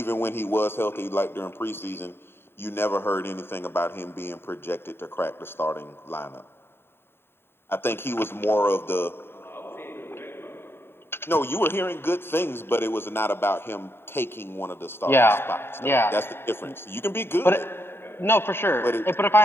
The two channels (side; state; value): right; late; 0.11 ms